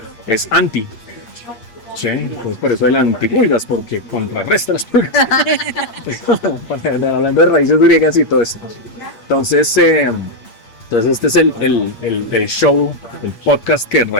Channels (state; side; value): late; right; 8.5 ms